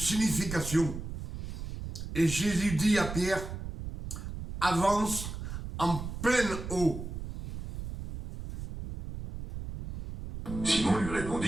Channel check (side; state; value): right; noise; rumble, 8 dB below the sound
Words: Et Jésus dit à Pierre, avance en pleine eau. Simon lui